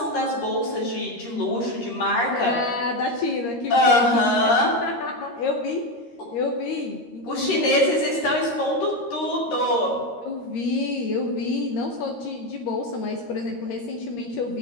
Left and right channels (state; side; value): late; right; 13 ms